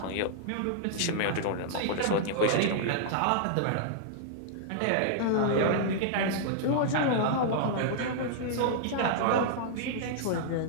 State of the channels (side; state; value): both; different; correlation -0.01